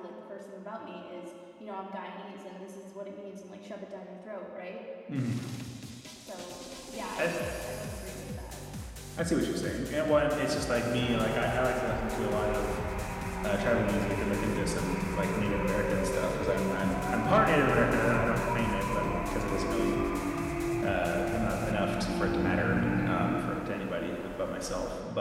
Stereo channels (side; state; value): both; identical; correlation 1.00